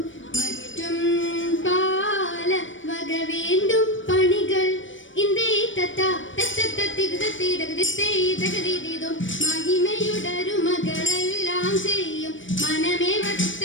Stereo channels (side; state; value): right; late; 0.56 ms